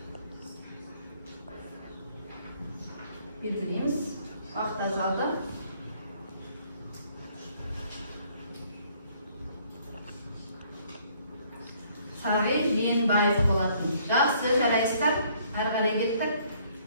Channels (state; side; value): inverted; both; correlation -0.63